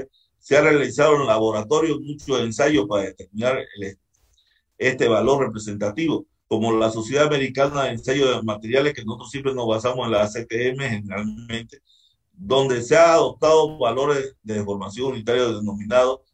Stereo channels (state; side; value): identical; both; correlation 1.00